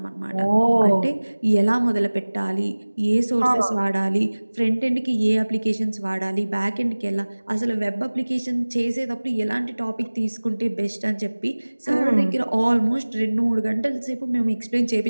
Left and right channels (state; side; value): inverted; both; correlation -1.00